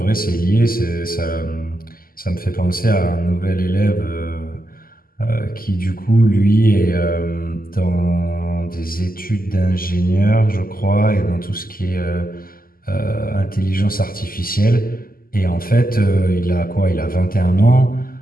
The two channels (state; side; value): late; right; 0.42 ms